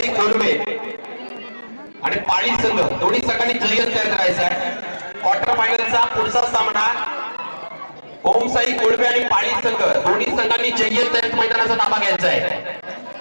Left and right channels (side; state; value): both; inverted; correlation -1.00